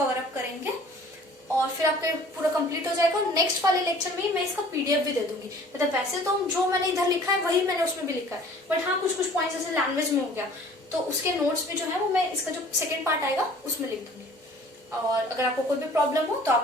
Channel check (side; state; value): both; normal; correlation 0.50